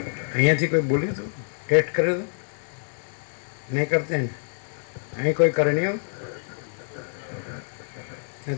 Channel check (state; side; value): silent; right; digital silence